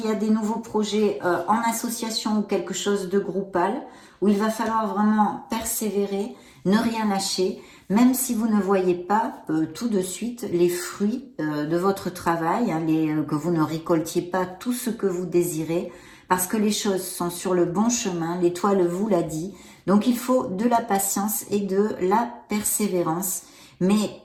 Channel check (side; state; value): both; identical; correlation 1.00